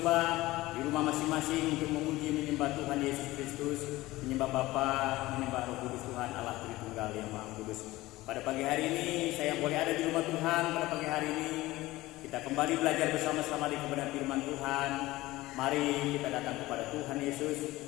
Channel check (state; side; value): quieter; right; 18.3 dB